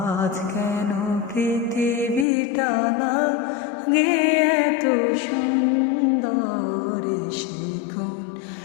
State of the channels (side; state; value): right; drops out; at 2.2 s